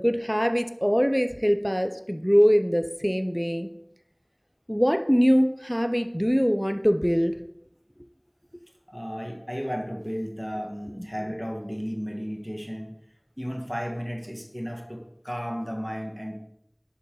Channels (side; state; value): both; identical; correlation 1.00